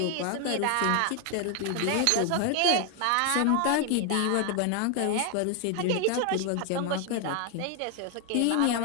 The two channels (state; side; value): different; both; correlation 0.01